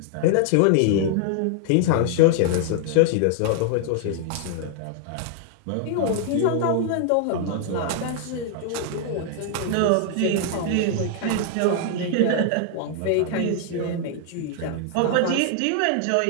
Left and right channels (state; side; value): different; both; correlation 0.00